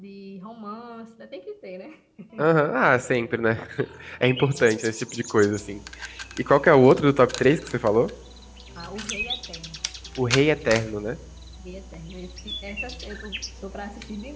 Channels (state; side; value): identical; both; correlation 1.00